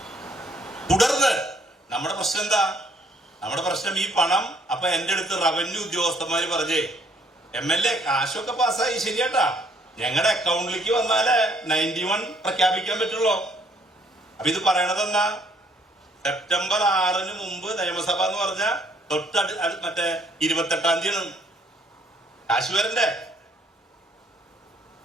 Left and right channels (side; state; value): both; normal; correlation 0.64